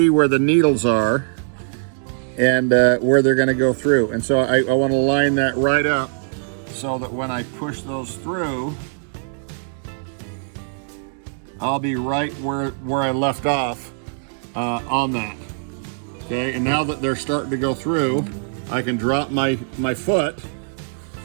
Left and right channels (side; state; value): left; silent; digital silence